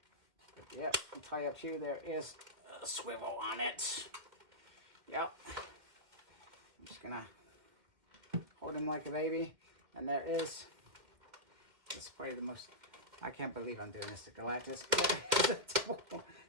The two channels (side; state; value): left; late; 2.3 ms